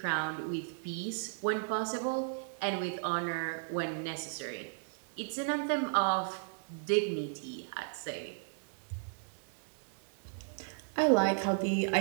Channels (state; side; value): silent; left; digital silence